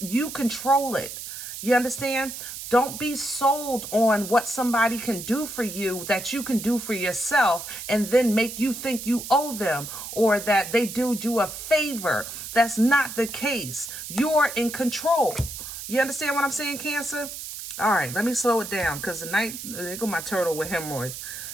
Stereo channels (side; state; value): right; noise; hiss, 9 dB below the sound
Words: You control it. You understand? Don't be sold on what somebody can do for you that you can do for yourself and then make you think you owe them or that they do you a favor. That's not the case. You're in control. You understand what I'm saying, Cancer? All right, let me slow it down because tonight, there go my turtle with hemorrhoids.